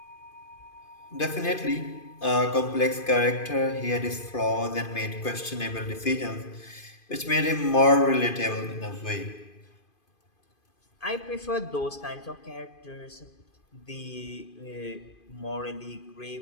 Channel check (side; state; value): right; late; 2.5 ms